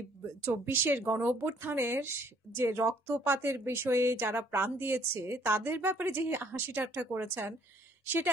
24-এর গণ অভ্যুত্থানের যে রক্তপাতের বিষয়ে যারা প্রাণ দিয়েছে তাদের ব্যাপারে যে হাসি ঠাট্টা করেছেন, সেটা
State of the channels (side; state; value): both; normal; correlation 0.62